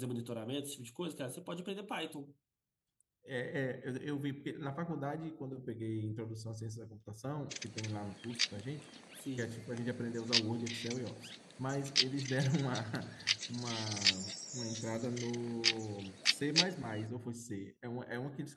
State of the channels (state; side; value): identical; both; correlation 1.00